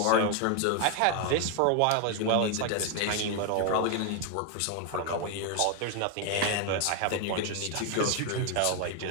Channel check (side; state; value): both; different; correlation 0.01